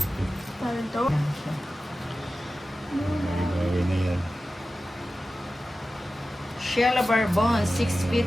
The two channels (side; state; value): both; normal; correlation 0.94